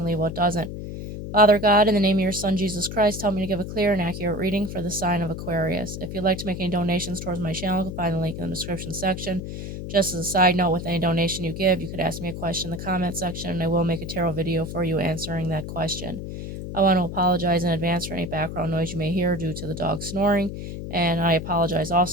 leave what doesn't. Father God, in the name of your Son, Jesus Christ, help me to give a clear and accurate reading for the sign of Aquarius. If you'd like to make any donations towards my channel, you can find the link in the description section. Just as a side note, with any donation you give, you could ask me a question in the comment section, and I will make a tarot video for you answering that question. I want to apologize in advance for any background noise you may hear due to the dog snoring. And I apologize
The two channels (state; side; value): noise; left; hum, 7 dB below the sound